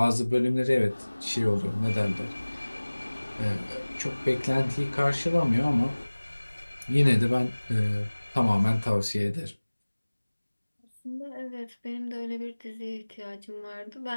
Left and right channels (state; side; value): inverted; both; correlation -1.00